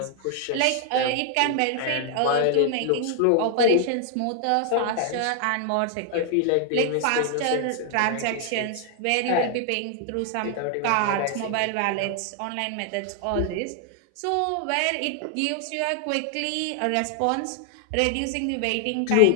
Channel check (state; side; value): different; both; correlation 0.00